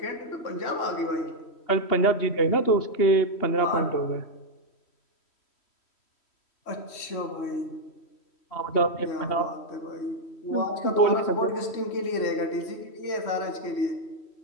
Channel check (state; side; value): late; right; 3.1 ms